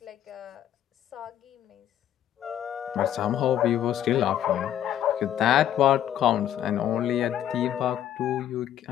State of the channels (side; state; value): right; quieter; 11.1 dB